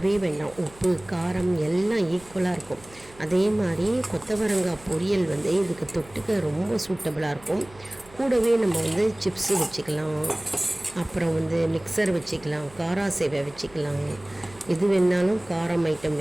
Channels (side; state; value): right; noise; hum, 23 dB below the sound